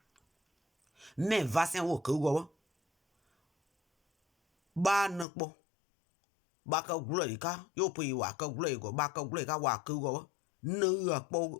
mais vaccin wo ko go ba na po ba ka glo ka yo pe wa ka glo go ba ka glo ka wa ko go no po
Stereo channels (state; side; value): drops out; right; at 5.2 s